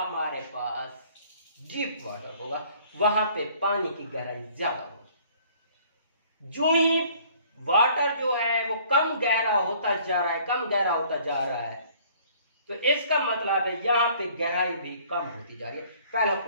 पास डीप वाटर होगा, वहां पे पानी की गहराई ज्यादा होगी। जो ही वाटर जो है वो कम गहरा होता जा रहा है, कम गहरा होता जा रहा है, तो इसका मतलब है यहां पे गहराई भी कम होती जा रही है। पहला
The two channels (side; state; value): both; inverted; correlation -0.57